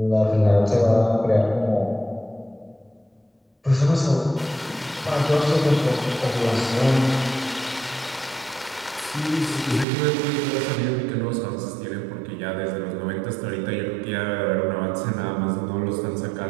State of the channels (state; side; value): drops out; left; at 9.9 s